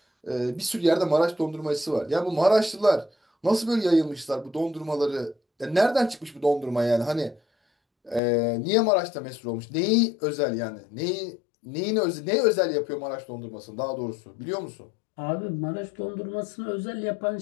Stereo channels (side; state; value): right; drops out; at 8.2 s